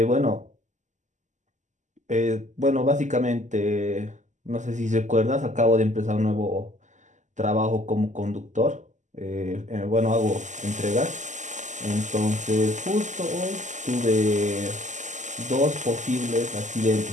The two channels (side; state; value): left; late; 0.35 ms